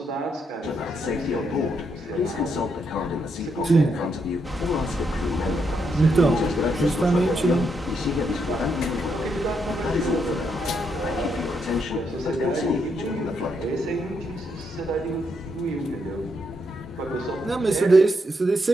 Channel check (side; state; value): both; normal; correlation 0.79